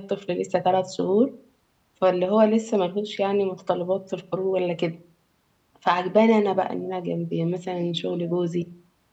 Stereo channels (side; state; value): both; identical; correlation 1.00